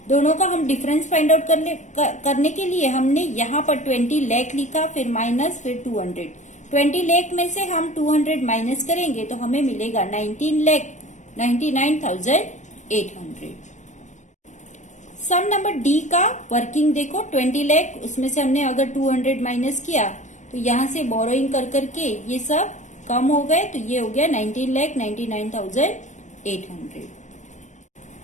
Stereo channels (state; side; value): late; right; 0.35 ms